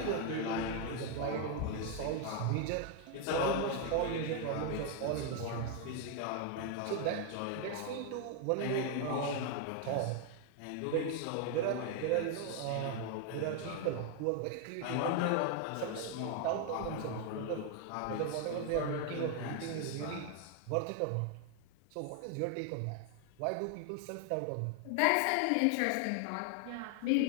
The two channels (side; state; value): both; different; correlation 0.01